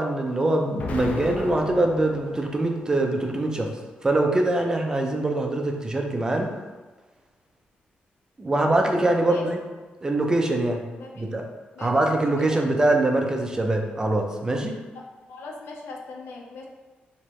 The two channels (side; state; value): both; normal; correlation 0.85